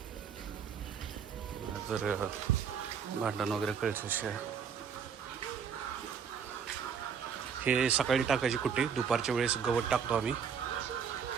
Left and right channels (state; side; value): quieter; left; 7.1 dB